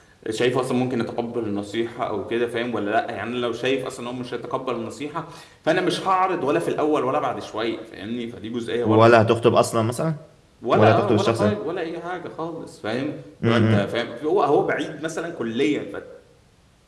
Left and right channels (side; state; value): both; identical; correlation 1.00